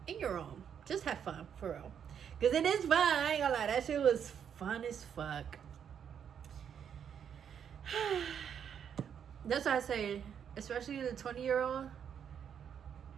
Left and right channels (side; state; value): left; quieter; 8.1 dB